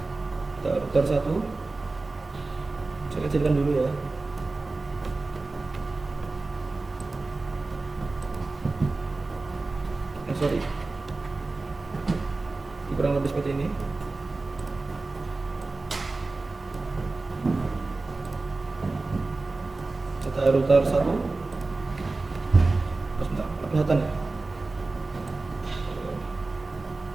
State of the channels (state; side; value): quieter; left; 3.5 dB